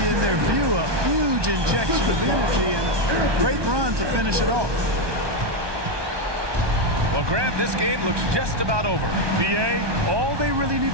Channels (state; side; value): late; left; 1.2 ms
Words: in their view, a huge injection of energy and a great run to finish it off. Well, Grant, this game looks just about over. BA, all they really need